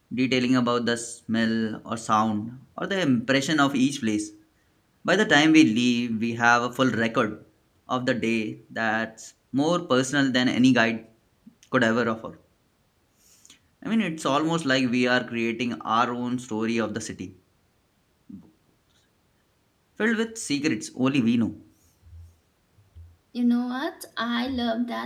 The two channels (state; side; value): identical; both; correlation 1.00